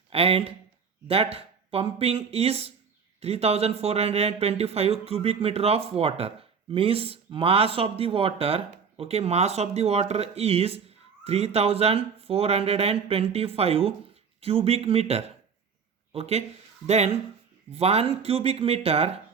And that pumping is 3425 cubic meter of water. Means mass of the water. Okay. Mass of the water is 3425 cubic meter. Okay, then 1 cubic meter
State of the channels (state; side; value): quieter; left; 6.1 dB